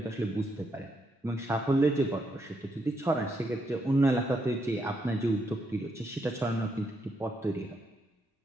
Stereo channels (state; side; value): normal; both; correlation 0.78